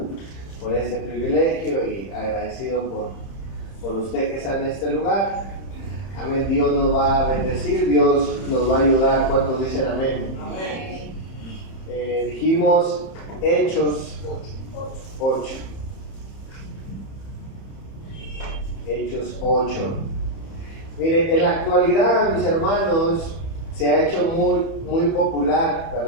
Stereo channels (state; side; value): late; right; 30 ms